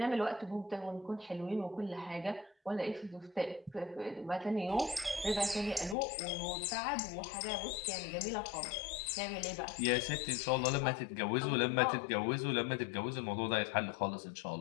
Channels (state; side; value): drops out; right; at 6.0 s